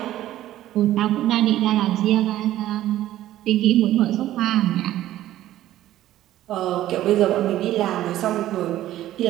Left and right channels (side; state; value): left; quieter; 13.7 dB